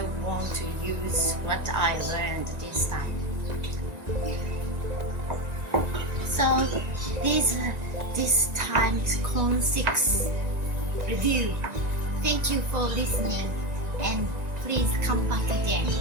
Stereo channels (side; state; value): left; late; 1.9 ms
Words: want to use what I learned this time. So this time's Con 6 review. Thank you for listening, and please come back again.